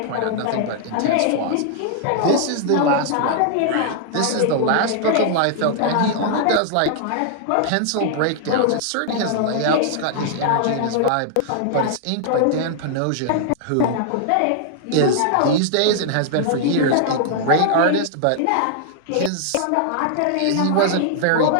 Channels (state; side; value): different; both; correlation -0.01